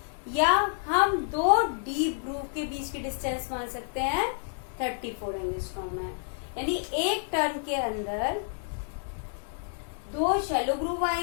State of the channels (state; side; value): silent; right; 58 dB below the other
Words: या हम दो डीप ग्रूव के बीच की डिस्टेंस मान सकते हैं 34 एंगस्ट्रॉम है। यानी एक टर्न के अंदर दो शैलो ग्रूव